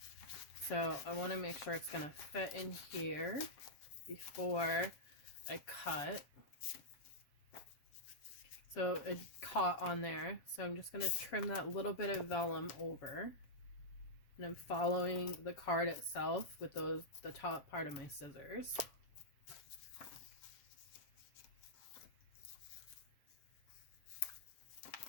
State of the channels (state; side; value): late; right; 7.5 ms